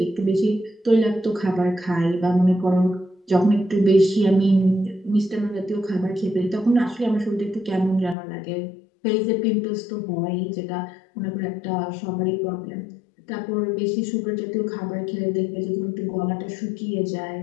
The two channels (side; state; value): right; drops out; at 8.2 s